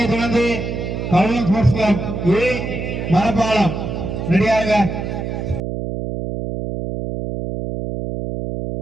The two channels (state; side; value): noise; right; hum, 4 dB below the sound